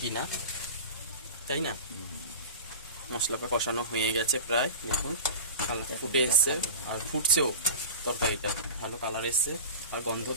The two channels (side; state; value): both; inverted; correlation -0.33